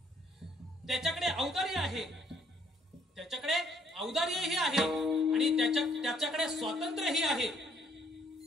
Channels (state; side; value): normal; both; correlation 0.65